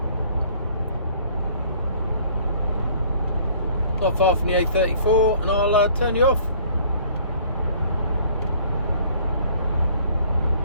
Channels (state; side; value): inverted; both; correlation -0.55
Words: Not far from the A34, and I'll turn you off.